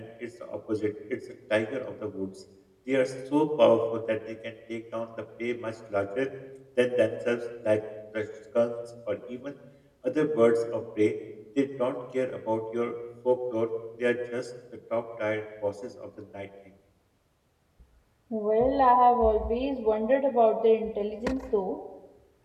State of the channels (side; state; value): both; identical; correlation 1.00